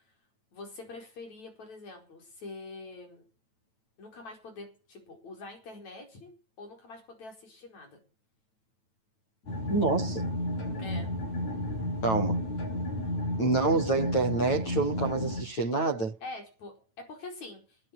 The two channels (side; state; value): right; late; 9.1 ms